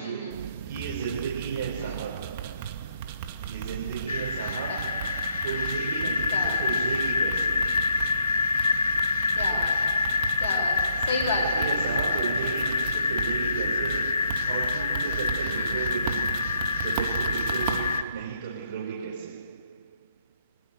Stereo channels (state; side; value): inverted; both; correlation -0.71